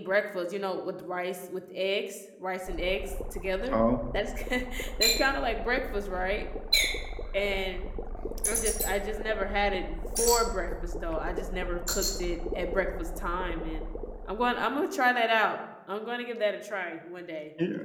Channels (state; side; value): identical; both; correlation 1.00